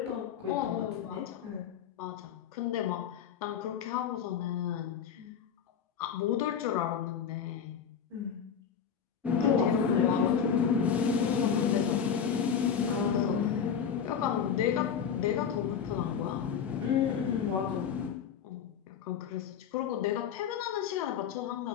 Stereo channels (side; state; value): right; quieter; 7.7 dB